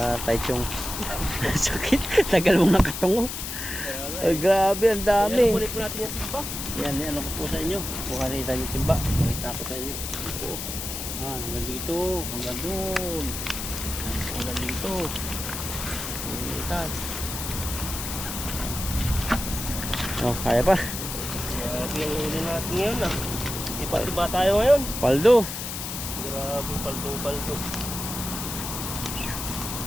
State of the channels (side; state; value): left; noise; hiss, 6 dB below the sound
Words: Taichung. Sakit. Tagal mong nakatungo. Kaya nga Ay, grabe, ang dami. Ayan, kunin po natin yung timba. Yan, ano ko po sa inyo. Kuha na Ethan yung timba. Pakita ko sa inyo. Hanggang dito. Hanggang doon. Hanggang dito. Ethan. Oh, kaya pa. Grabe ang huli natin ngayon ah. Iba-iba tayo ngayon. Paldo. Grabe, paldong-paldo.